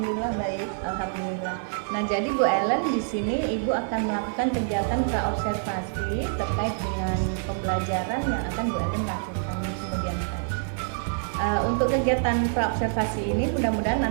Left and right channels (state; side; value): silent; left; digital silence